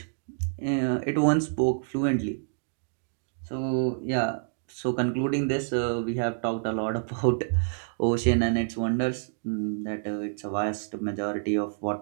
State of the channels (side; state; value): left; silent; digital silence